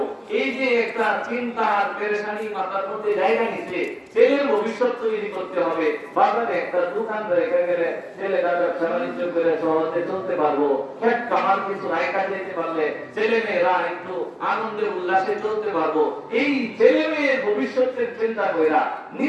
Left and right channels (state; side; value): identical; both; correlation 1.00